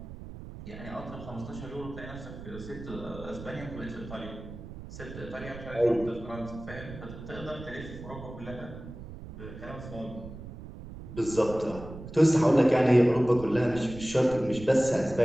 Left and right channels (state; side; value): noise; right; rumble, 13 dB below the sound